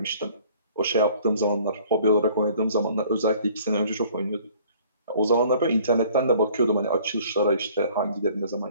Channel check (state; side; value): inverted; both; correlation -0.55